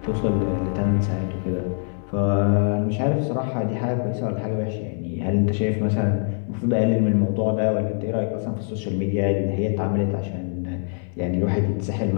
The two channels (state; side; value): silent; right; 60 dB below the other